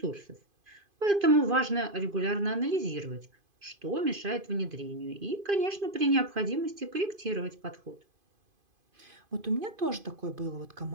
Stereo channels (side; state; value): left; late; 2.5 ms